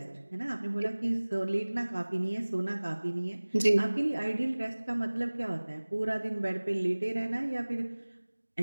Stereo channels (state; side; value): inverted; both; correlation -1.00